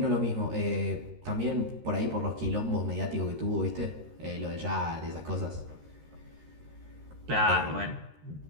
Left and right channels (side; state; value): left; late; 13 ms